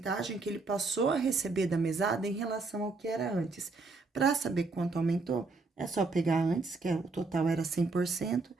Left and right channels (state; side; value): quieter; left; 3.8 dB